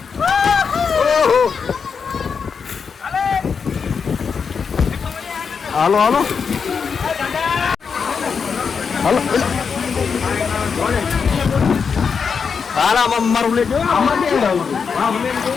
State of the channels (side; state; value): right; quieter; 6.0 dB